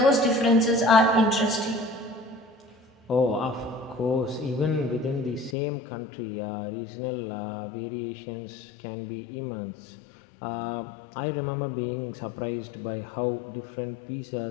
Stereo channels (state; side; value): drops out; right; at 5.6 s